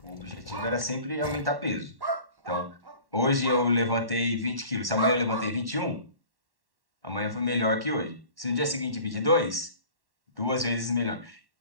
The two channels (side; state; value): left; late; 1.1 ms